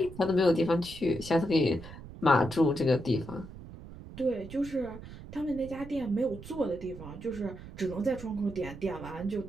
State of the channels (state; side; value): noise; right; rumble, 14 dB below the sound